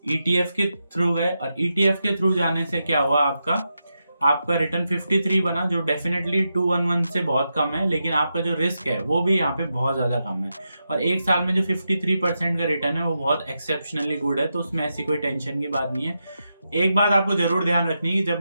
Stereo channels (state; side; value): inverted; both; correlation -0.87